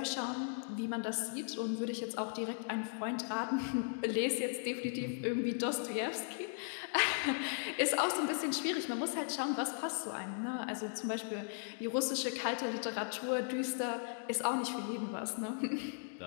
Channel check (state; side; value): silent; right; digital silence